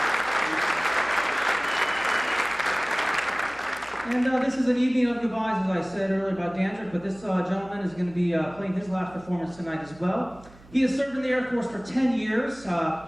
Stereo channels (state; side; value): noise; right; hum, 23 dB below the sound